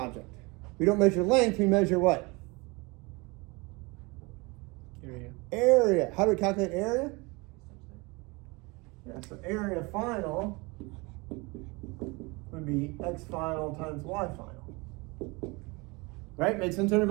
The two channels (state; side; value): quieter; left; 26.4 dB